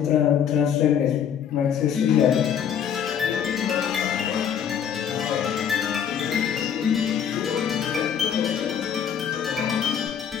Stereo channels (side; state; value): right; quieter; 8.4 dB